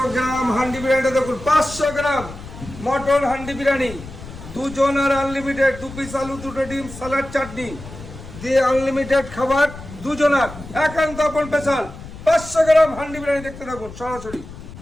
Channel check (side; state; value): left; noise; rumble, 14 dB below the sound